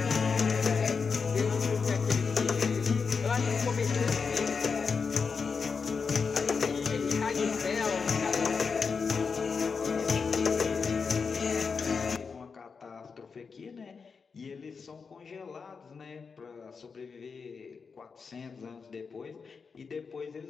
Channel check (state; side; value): quieter; right; 5.3 dB